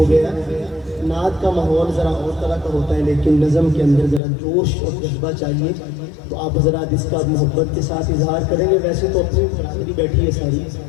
گیا۔ نعت کا ماحول ذرا اور طرح کا ہوتا ہے، لیکن نظم کے اندر ذرا جوش اور جذبہ چاہیے، تو آپ حضرات اس کا محبت کے ساتھ اظہار کریں گے۔ ویسے تو اپنی برادری بیٹھی ہے ساری،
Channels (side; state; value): right; drops out; at 4.2 s